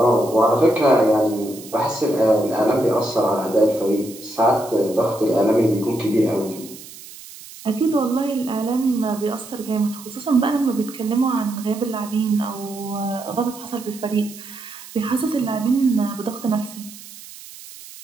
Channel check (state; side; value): noise; right; hiss, 17 dB below the sound